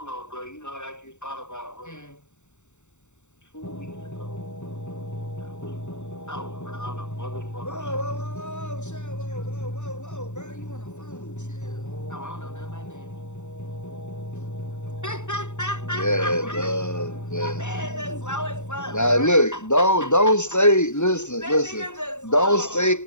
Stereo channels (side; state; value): right; late; 0.84 ms